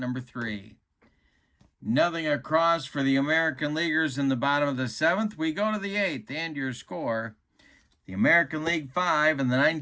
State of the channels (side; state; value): both; identical; correlation 1.00